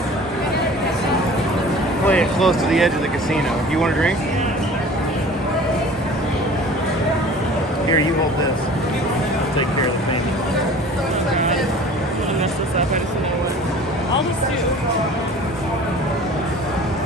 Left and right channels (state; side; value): normal; both; correlation 0.44